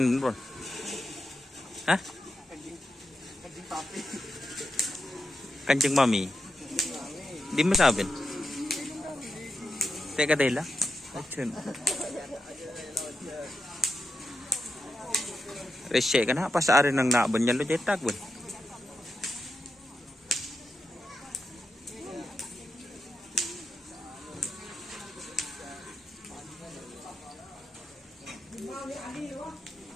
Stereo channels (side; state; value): both; normal; correlation 0.87